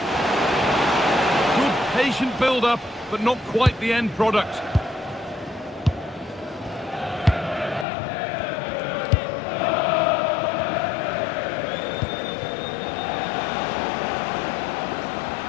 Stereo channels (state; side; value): drops out; right; at 7.9 s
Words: Good patient build-up, but not quite the end product.